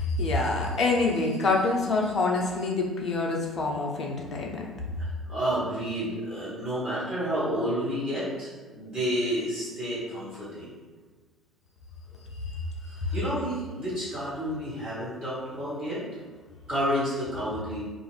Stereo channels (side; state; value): both; normal; correlation 0.47